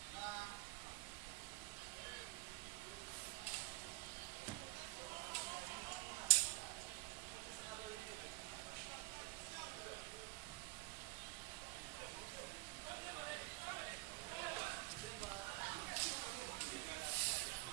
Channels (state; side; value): quieter; left; 24.0 dB